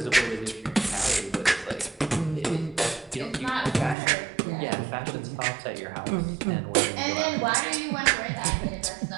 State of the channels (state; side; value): drops out; left; at 4.0 s